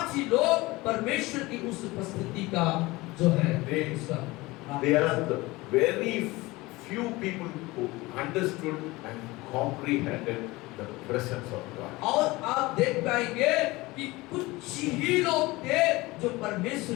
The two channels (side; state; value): right; quieter; 21.2 dB